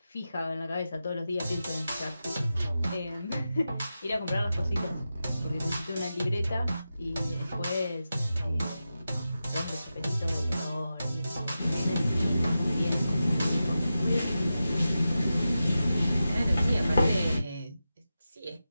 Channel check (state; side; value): inverted; both; correlation -0.91